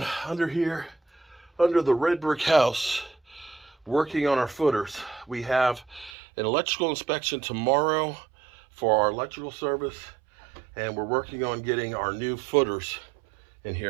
under here, under the red brick house, working on our footers. We have an electrical inspection tomorrow for our electrical service, and we're working on getting our new footers in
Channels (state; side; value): drops out; left; at 6.1 s